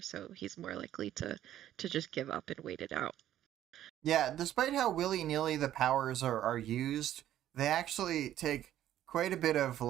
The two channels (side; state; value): left; quieter; 12.2 dB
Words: so he's more likely to just give up and wait it out. Yeah, despite how willy-nilly the powers are used, they actually take quite a bit of